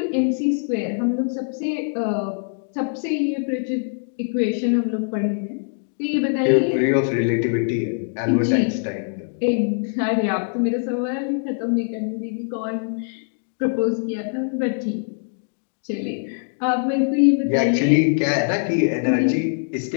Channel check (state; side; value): silent; right; digital silence